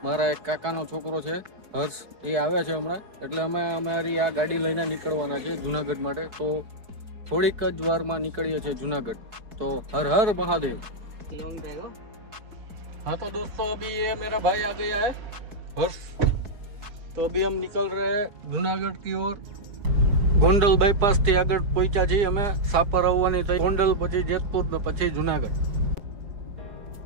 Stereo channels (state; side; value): late; left; 4.6 ms